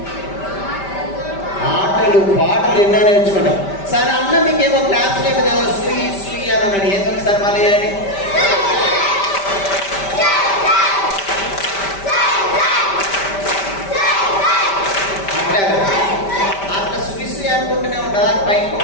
ఆటలు పాటలు ఎన్నో నేర్చుకుంటాం. సరే అన్న మీకేమో క్లాస్ లేదు కదా, శ్రీ శ్రీ అని అన్నాడు. ఏదో ఒకసారి మళ్ళీ చేయండి. అట్లా శ్రీ శ్రీ అనుకుంటూనే ఉంటారు. పైకి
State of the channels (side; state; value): right; late; 5.1 ms